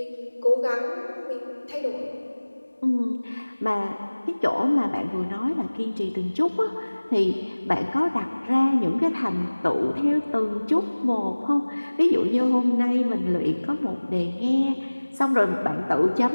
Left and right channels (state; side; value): inverted; both; correlation -1.00